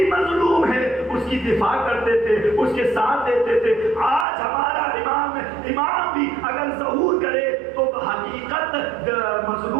مظلوم ہے اس کی دفاع کرتے تھے، اس کے ساتھ دیتے تھے۔ آج ہمارا امام بھی اگر ظہور کرے تو حقیقت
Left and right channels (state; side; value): drops out; left; at 4.2 s